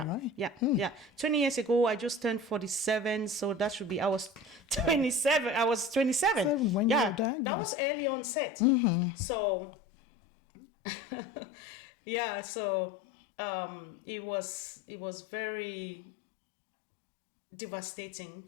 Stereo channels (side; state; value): right; drops out; at 7.2 s